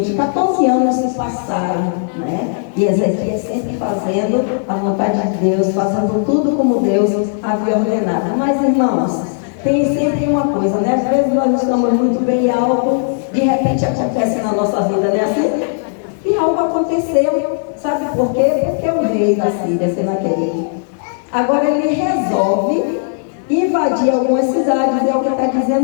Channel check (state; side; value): silent; right; digital silence